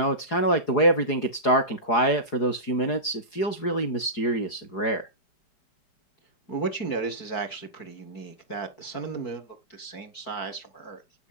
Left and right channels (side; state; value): right; late; 4.8 ms